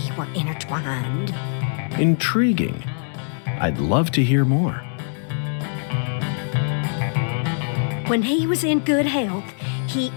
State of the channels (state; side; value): silent; right; digital silence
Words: were intertwined. Intriguing. I'd love to hear more. When he was in good health, he